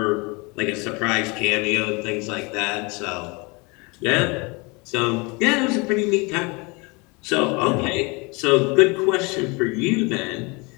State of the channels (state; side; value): quieter; right; 28.1 dB